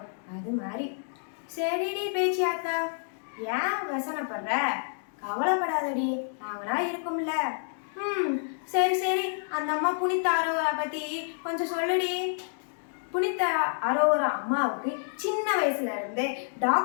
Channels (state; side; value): silent; right; digital silence